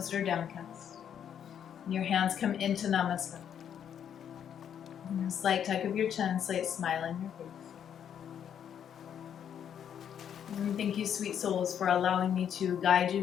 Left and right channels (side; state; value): right; quieter; 8.9 dB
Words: or downcast. And your hands come into Namaste. And a slight tuck of your chin, slight smile on your face. And thank you, sweet souls, for allowing me to guide